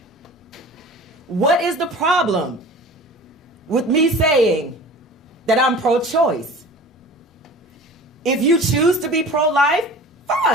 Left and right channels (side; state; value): both; normal; correlation 0.40